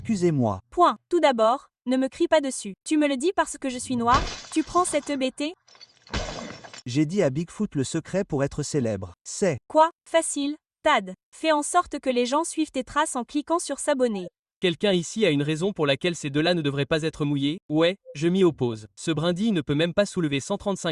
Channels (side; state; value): both; identical; correlation 1.00